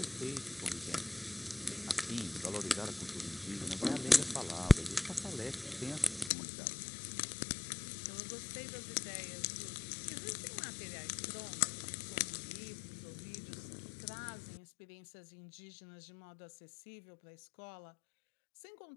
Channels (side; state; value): right; drops out; at 6.3 s